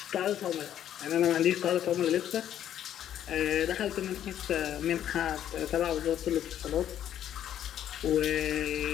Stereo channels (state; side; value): quieter; right; 10.7 dB